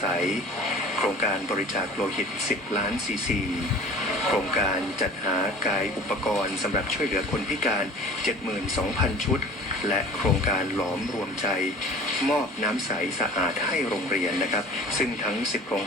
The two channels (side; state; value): both; normal; correlation 0.43